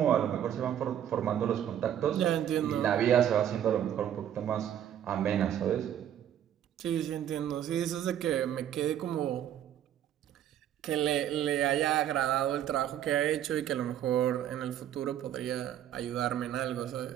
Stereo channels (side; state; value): left; quieter; 10.5 dB